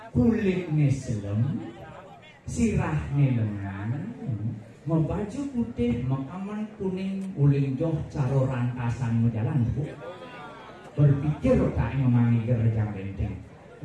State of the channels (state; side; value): identical; both; correlation 1.00